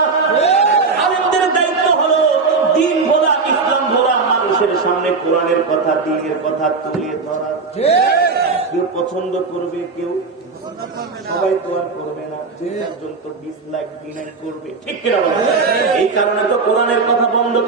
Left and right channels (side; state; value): left; quieter; 4.4 dB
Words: আলেমদের দায়িত্ব হলো দ্বীন বলা, ইসলাম বলা, মানুষের সামনে কোরআনের কথা, দ্বীনের কথা তুলে ধরা। কেউ পছন্দ করবে, কেউ সবাই তো আর করবে না। একজন তো ডিসলাইক করবে, ঠিক কিনা? এই কারণে তো কোরআনের কথা বন্ধ